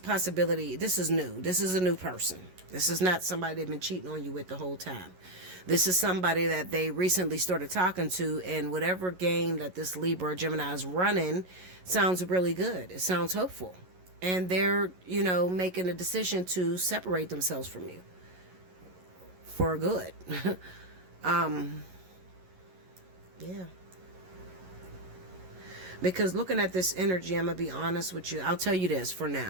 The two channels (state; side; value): late; left; 11 ms